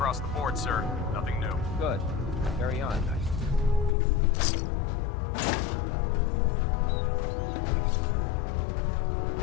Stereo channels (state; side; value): drops out; right; at 3.9 s